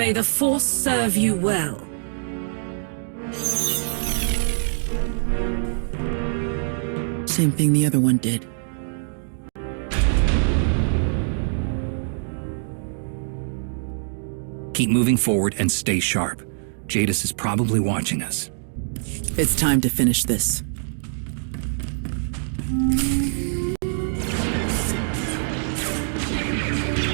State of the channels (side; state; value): left; silent; 63 dB below the other